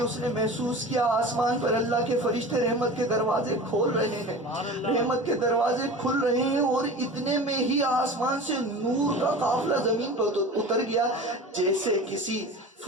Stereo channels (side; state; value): both; normal; correlation 0.35